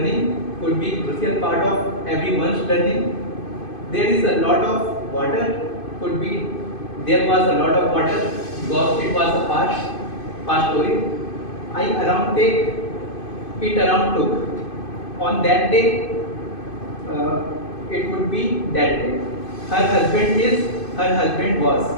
could be crucial part of everyone's learning. There is a lot of water could be there was a lot of water because it was a past story. I around take it around took. On that day, it would be that day. Her husband was.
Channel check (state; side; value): late; right; 2.5 ms